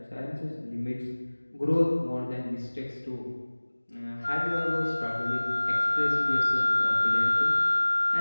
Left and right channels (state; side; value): inverted; both; correlation -1.00